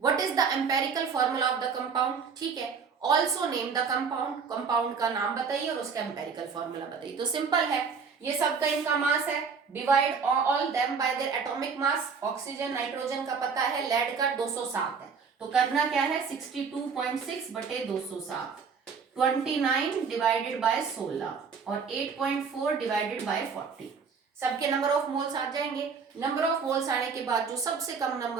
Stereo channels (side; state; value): left; quieter; 5.7 dB